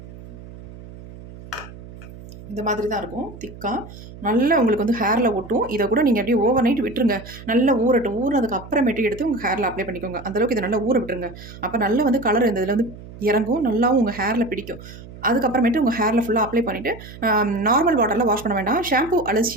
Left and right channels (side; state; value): right; noise; hum, 16 dB below the sound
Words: இந்த மாதிரி தான் இருக்கும் திக்காக. நல்லா உங்களுக்கு வந்து ஹேரில் ஒட்டும். இதை கூட நீங்கள் அப்படியே ஓவர் நைட் விட்டுருங்க. நல்லா ஊறட்டும். ஊறினதுக்கு அப்புறமேட்டு எடுத்து உங்கள் ஹேரில் அப்ளை பண்ணிக்கோங்க. அந்தளவுக்கு இதை நல்லா ஊற விட்டுருங்க. அப்போ நல்லா வந்து கலர் இந்த இதில் வந்து இறங்கும். நல்லாவும் உங்கள் ஹேரில் பிடிக்கும். அதுக்கப்புறமேட்டு உங்கள் ஹேரில் ஃபுல்லாக அப்ளை பண்ணிவிட்டு நார்மல் வாட்டரில் வாஷ் பண்ண வேண்டாம். ஷாம்பு அல்லது